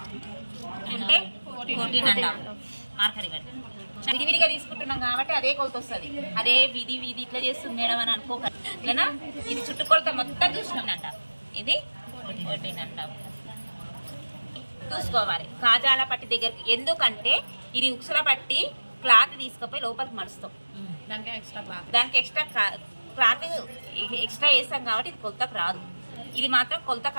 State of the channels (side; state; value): both; inverted; correlation -1.00